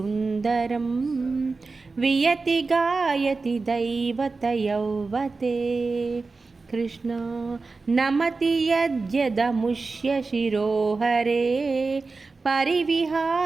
వియతి గాయతి దైవత యౌవతే. కృష్ణ నమతి యద్యదముష్య శిరోహరే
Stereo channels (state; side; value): quieter; left; 4.0 dB